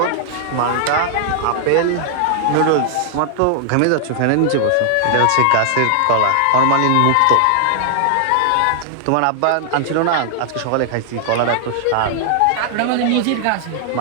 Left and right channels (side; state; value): both; different; correlation -0.01